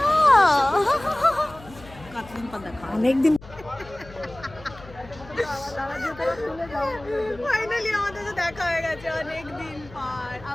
কতদিন পর দেখা, অনেকদিন। ফাইনালি আমাদের তো দেখা হয়ে গেছে অনেকদিন পর।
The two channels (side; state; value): left; noise; hum, 19 dB below the sound